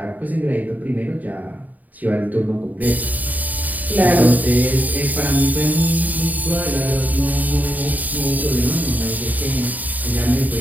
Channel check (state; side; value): late; left; 0.080 ms